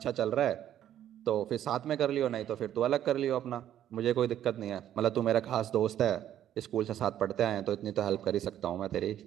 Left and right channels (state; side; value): quieter; left; 11.2 dB